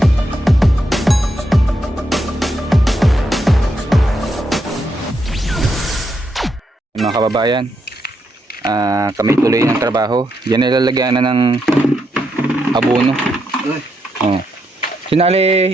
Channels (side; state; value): both; normal; correlation 0.80